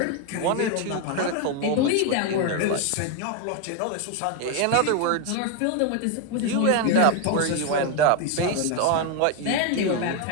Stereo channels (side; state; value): both; different; correlation 0.01